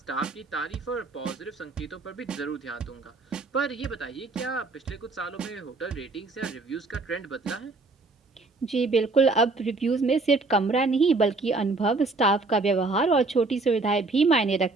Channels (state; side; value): quieter; left; 3.6 dB